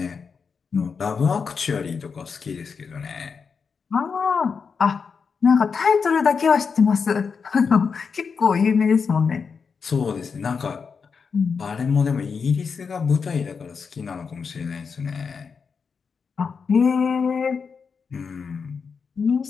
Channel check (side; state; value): right; quieter; 5.7 dB